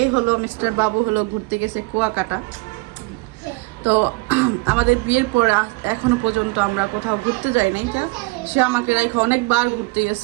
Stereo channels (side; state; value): left; quieter; 26.0 dB